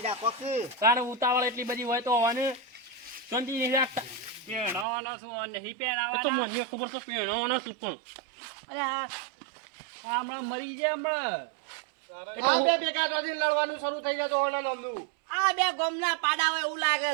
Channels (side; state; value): left; drops out; at 4.9 s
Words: રાખો કે તારે ઉતાવળ એટલી બધી હોય તો હોને શાંતિ નહીં રાખતા પેણાવાનો શું નહીં પેણાવાનો તો મને ખબર છે પેણાવાનો શું પણ અરે હા હમણાં મરી જાય હમણાં આ બે ભેગા થઈને લડવાનું શરૂ થઈ જાય તો ઓલા નમનું. આ બે ગોમના પાડા હોય એવું લાગે